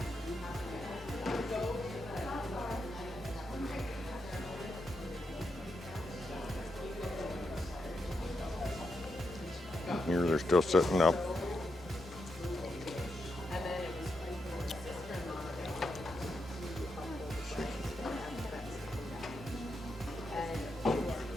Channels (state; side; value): normal; both; correlation 0.84